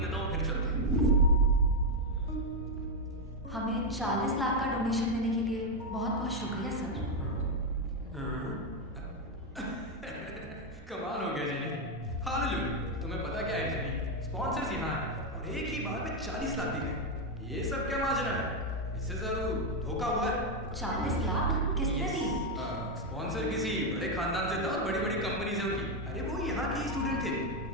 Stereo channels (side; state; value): both; normal; correlation 0.04